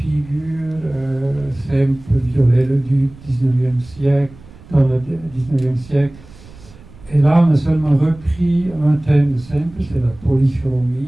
Semper, Viollet-le-Duc, 19e siècle, dans le 19e siècle. Et là, on a seulement repris un thème de Semper, c'est la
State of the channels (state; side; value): noise; right; rumble, 21 dB below the sound